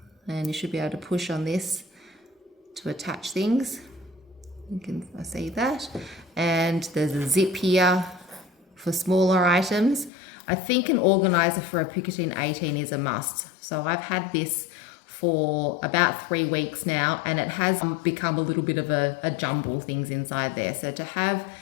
and you should be able to push on this to attach things. You can see that. And there's a zip here for smaller items. I think an organizer for a Picotin 18 is a must. So I've had this for about 3 weeks now, and it has become a little bit of a jumble things inside there. So to have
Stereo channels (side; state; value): right; drops out; at 10.1 s